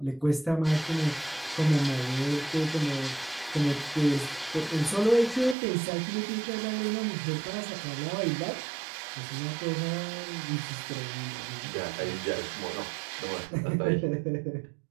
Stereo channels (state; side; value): drops out; left; at 5.6 s